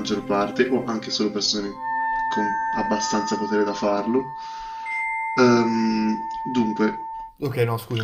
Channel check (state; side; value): identical; both; correlation 1.00